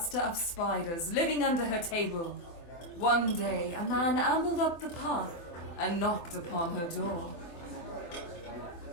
of spiders living under her table. One day, a man ambled up the path and knocked upon her door.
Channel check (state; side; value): late; right; 24 ms